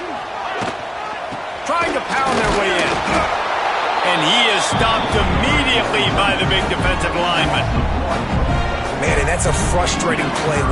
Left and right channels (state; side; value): identical; both; correlation 1.00